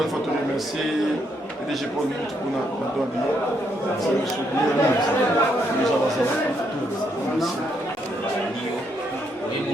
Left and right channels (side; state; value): both; normal; correlation 0.75